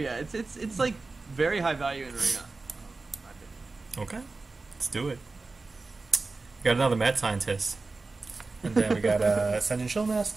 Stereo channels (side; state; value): left; quieter; 3.7 dB